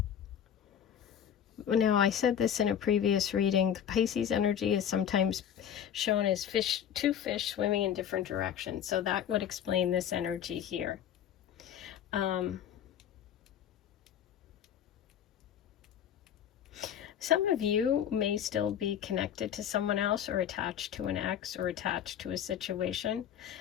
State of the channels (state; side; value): quieter; right; 9.3 dB